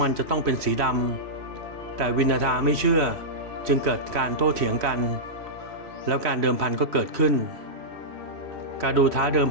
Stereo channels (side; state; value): left; late; 3.1 ms